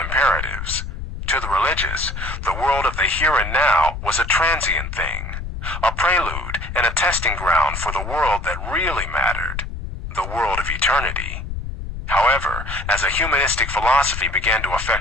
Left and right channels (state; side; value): noise; left; rumble, 7 dB below the sound